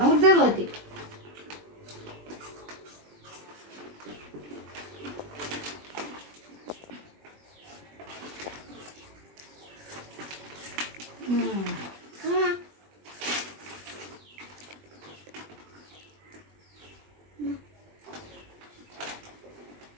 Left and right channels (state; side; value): late; left; 20 ms